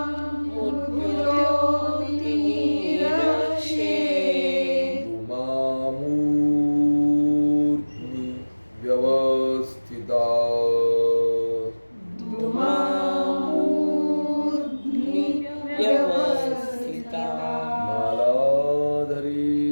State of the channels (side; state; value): both; inverted; correlation -1.00